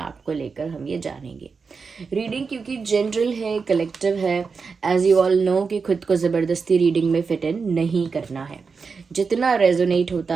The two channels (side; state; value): left; quieter; 5.1 dB